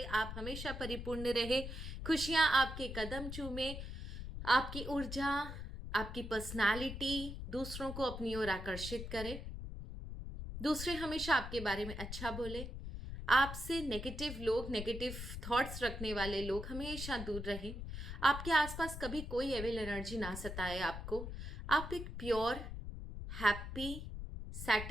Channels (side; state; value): left; noise; rumble, 7 dB below the sound